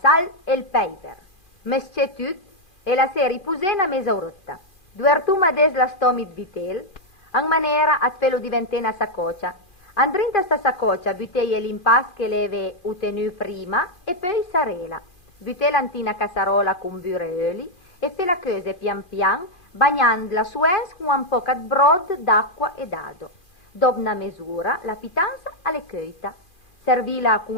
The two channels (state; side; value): late; right; 2.4 ms